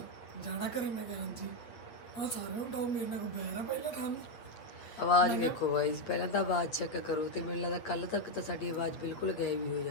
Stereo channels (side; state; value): right; late; 9.0 ms